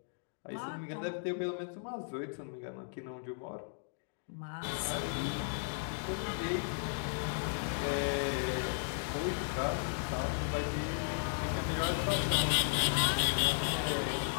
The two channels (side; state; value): right; silent; digital silence